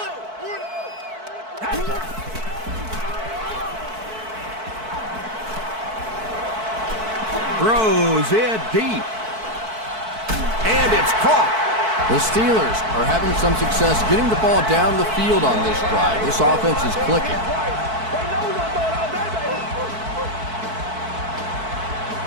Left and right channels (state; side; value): late; left; 4.6 ms